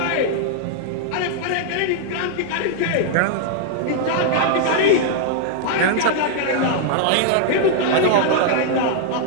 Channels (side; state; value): both; different; correlation -0.01